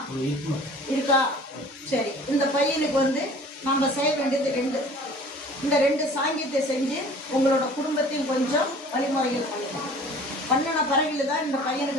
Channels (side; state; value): both; normal; correlation 0.47